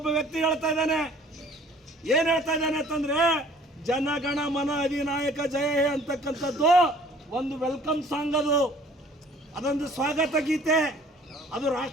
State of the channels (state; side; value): normal; both; correlation 0.54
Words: ವ್ಯಕ್ತಿ ಹೇಳ್ತಾ ಇದ್ದಾನೆ. ಏನ್ ಹೇಳ್ತಾ ಇದ್ದಾನೆ ಅಂತಂದ್ರೆ, ಜನಗಣ ಮನ ಅಧಿನಾಯಕ ಜಯ ಹೇ ಅಂತಕ್ಕಂಥದ್ದು ಒಂದು ವೆಲ್ಕಮ್ ಸಾಂಗ್, ಅದೊಂದು ಸ್ವಾಗತ ಗೀತೆ, ಅದು